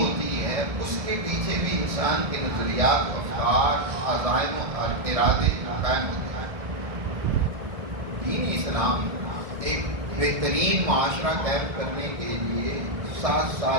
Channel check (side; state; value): left; late; 1.7 ms